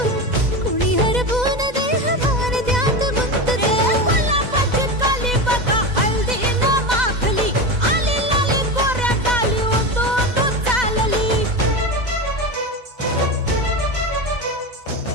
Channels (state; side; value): late; left; 2.0 ms